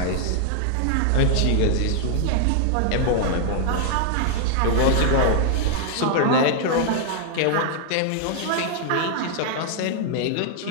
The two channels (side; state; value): both; different; correlation 0.00